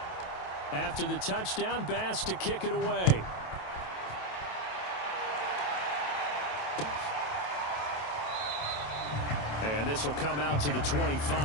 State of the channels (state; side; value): late; right; 27 ms